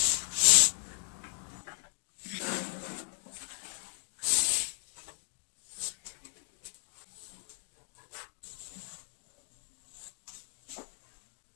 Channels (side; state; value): right; silent; digital silence